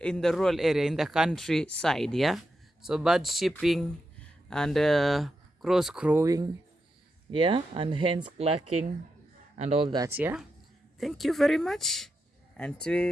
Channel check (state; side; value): normal; both; correlation 0.87